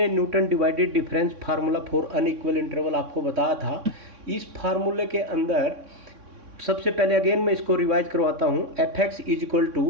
Newton divided difference formula for unequal interval आपको बताया था। इस फार्मूले के अंदर सबसे पहले अगेन मैं इसको रिवाइज करवाता हूँ। F X is equal to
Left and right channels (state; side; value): late; left; 3.6 ms